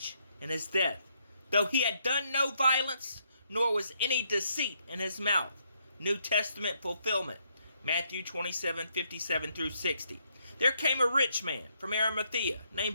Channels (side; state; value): both; inverted; correlation -0.74